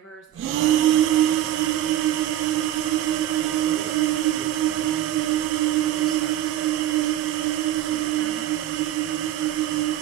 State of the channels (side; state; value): left; quieter; 12.6 dB